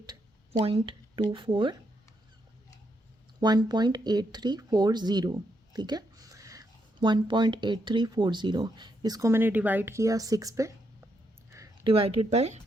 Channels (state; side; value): normal; both; correlation 0.79